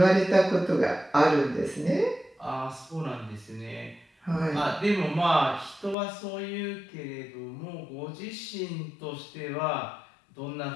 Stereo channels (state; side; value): drops out; right; at 6.0 s